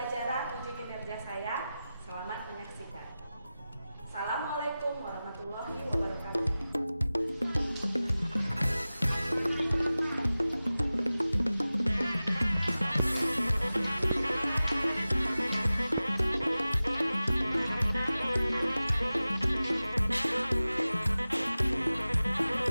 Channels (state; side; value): inverted; both; correlation -0.95